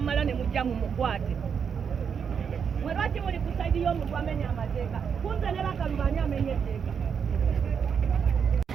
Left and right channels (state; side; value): quieter; left; 6.9 dB